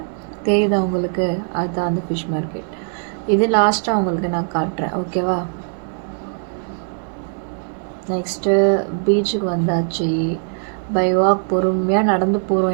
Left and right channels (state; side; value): silent; left; digital silence